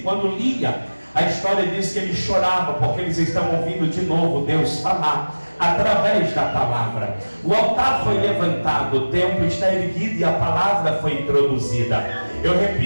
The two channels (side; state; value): both; inverted; correlation -1.00